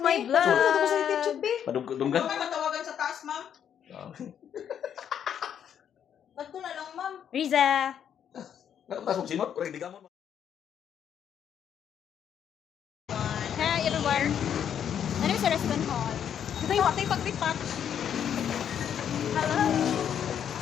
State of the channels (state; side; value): quieter; right; 8.9 dB